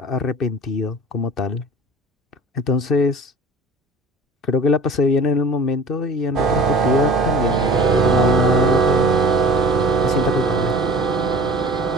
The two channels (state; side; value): normal; both; correlation 0.41